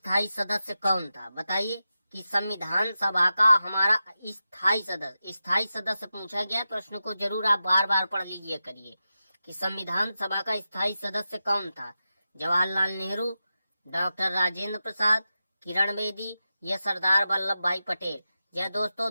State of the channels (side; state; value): both; inverted; correlation -0.91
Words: सदस्य कौन था? बताइए कि संविधान सभा का हमारा स्थायी सदस्य पूछा गया। प्रश्न को जरूर आप बार बार पढ़ लीजिए करिए कि संविधान सभा का स्थायी सदस्य कौन था? जवाहरलाल नेहरू, डॉक्टर राजेंद्र प्रसाद, किरण बेदी या सरदार वल्लभ भाई पटेल? यह